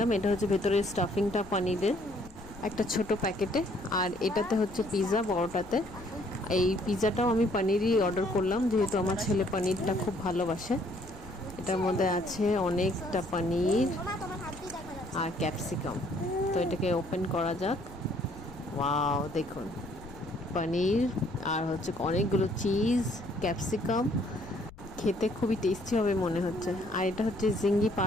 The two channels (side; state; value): left; noise; rumble, 19 dB below the sound